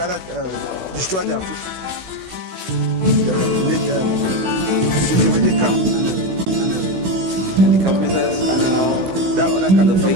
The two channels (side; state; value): left; late; 16 ms